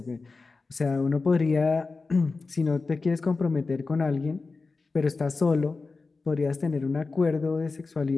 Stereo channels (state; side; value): quieter; right; 4.0 dB